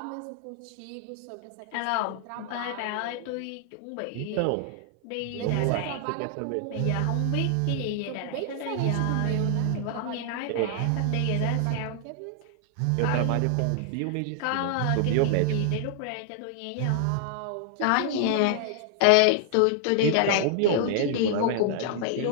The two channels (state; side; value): different; both; correlation 0.00